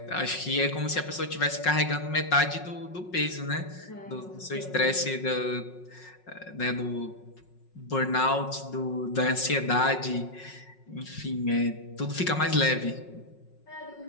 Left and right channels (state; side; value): late; right; 5.5 ms